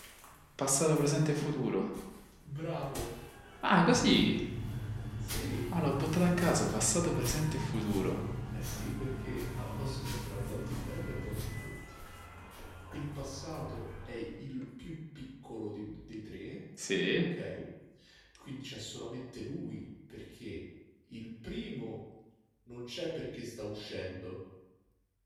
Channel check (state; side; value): identical; both; correlation 1.00